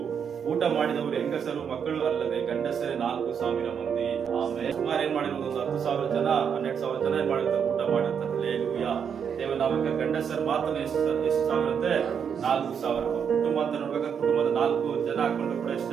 ಊಟ ಮಾಡಿದವರು ಹೆಂಗಸರು ಮಕ್ಕಳು ಅಲ್ಲದೆ ಗಂಡಸರೇ 4,000 ಮಂದಿ. ಆಮೇಲೆ ಸುಮಾರು ಏನ್ ಮಾಡಿರೋದು 10,000 ಜನ 12,000 ಜನ ಏನ್ ಮಾಡಿರ್ತಾರೆ, ಊಟ ಮಾಡಿರ್ತಾರೆ. ಹಲ್ಲೆಲೂಯಾ. ದೇವನಾಮಕ್ಕೆ ಗಂಡಸರು ಮಾತ್ರ ಎಷ್ಟು ಸಾವಿರ ಅಂದ್ರೆ 4,000. ಕುಟುಂಬ ಅಂತ ನೋಡ್ಬೇಕಾದ್ರೆ ಕುಟುಂಬದ 4 ಜನ ಹಾಕೊಂಡು ಕೂಡ ಎಷ್ಟು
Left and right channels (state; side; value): quieter; left; 7.4 dB